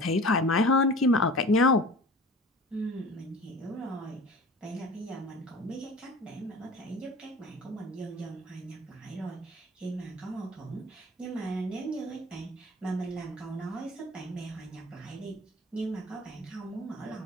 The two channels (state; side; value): normal; both; correlation 0.40